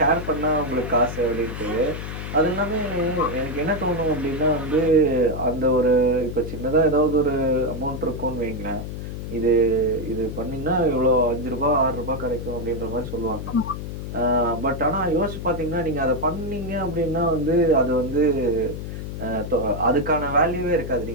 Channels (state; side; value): noise; left; hum, 7 dB below the sound